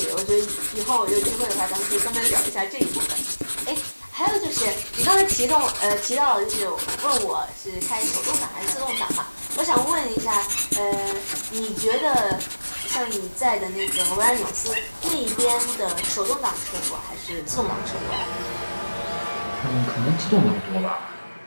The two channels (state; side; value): inverted; both; correlation -1.00